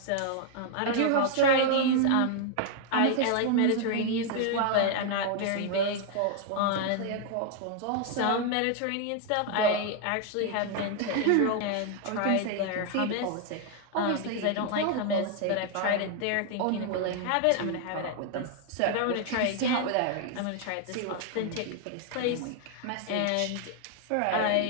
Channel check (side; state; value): both; different; correlation 0.00